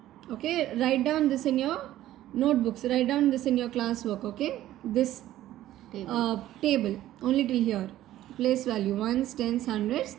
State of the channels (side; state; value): left; quieter; 13.8 dB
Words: Okay, write down this in your notebooks, write down this in your class work. Okay, this table only till here. Place value ones, tens, hundreds,